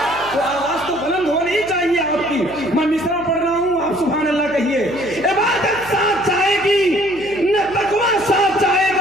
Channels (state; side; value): noise; right; hum, 19 dB below the sound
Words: تو آواز تو بلند ہونی چاہیے آپ کی۔ میں مصرع پڑھ رہا ہوں، آپ سبحان اللہ کہیے۔ عبادت ساتھ جائے گی نہ تقویٰ ساتھ جائے